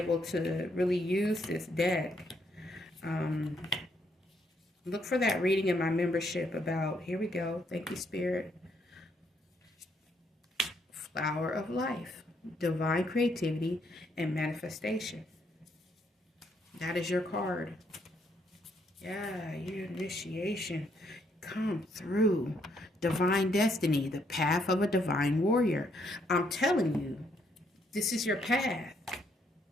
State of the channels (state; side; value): normal; both; correlation 0.72